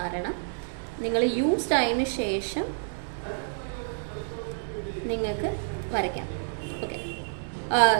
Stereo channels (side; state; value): left; silent; digital silence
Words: നിങ്ങൾ യൂസ്ഡ് ആയതിനു ശേഷം നിങ്ങൾക്ക് വരയ്ക്കാം. ഓക്കെ,